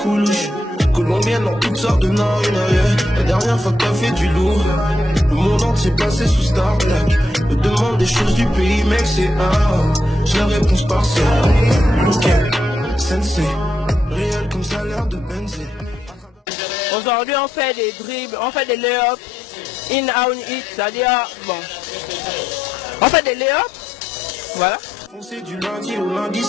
coulouches. Colombiennes dans toutes sortes de narines. La dernière fois que t'as fait du lourd, le monde entier passé sous Star Black. Me demande des choses du pays, mec, c'est j'ai la réponse partielle. Ok, sensei, réel comme ça a l'air de Benzé. Aujourd'hui, on fait des dribbles, on fait des lay-ups, in, out, hit, c'est-à-dire, bon, on fait des lay-ups, voilà. C'est du lundi au lundi,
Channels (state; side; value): normal; both; correlation 0.81